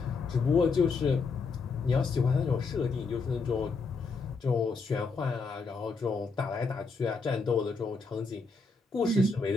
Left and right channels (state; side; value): quieter; right; 4.4 dB